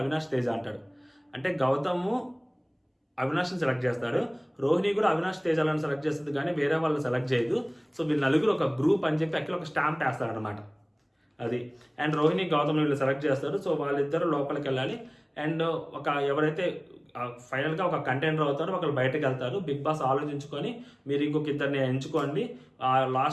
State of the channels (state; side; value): identical; both; correlation 1.00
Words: Teja అంటాడు. అంటే గౌతము అవినాష్ని సెలెక్ట్ చేస్తాడు, రోహిణి కూడా అవినాష్ తేజాలను సెలెక్ట్ చేస్తుంది, కానీ వేరే వాళ్ళని సెలెక్ట్ చేయదు. సో వీళ్ళు నలుగురు ఒక గ్రూప్ అని చెప్పి అక్కడ ఒక స్టాంప్ వేస్తాడు అనమాట అది. అండ్ రోహిణి గౌతమ్ వీళ్ళు సెలెక్ట్ చేస్తారు. సో వాళ్ళిద్దరు లోపలికి వెళ్ళాలి. అండ్ ఎవరైతే ఫైనల్గా ఒక కంటెండర్ అవుతారో ఒకరు బయటకు వెళ్తారు. బిగ్ బాస్ ఆలోచించుకొని మీరు ఇంకొక ఇద్దరిని ఎంచుకోండి.